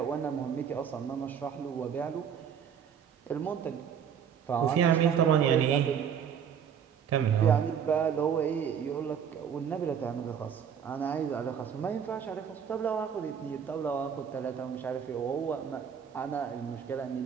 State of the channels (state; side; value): quieter; left; 7.9 dB